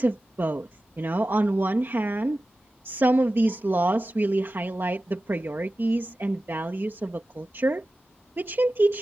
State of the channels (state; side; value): normal; both; correlation 0.95